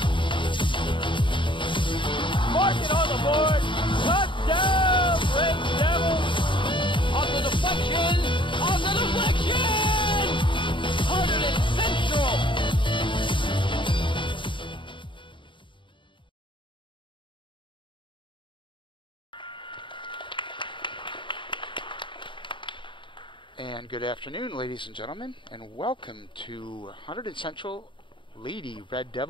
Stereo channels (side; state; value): right; late; 0.24 ms